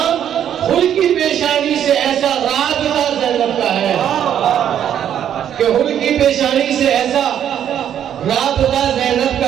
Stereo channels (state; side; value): quieter; left; 9.8 dB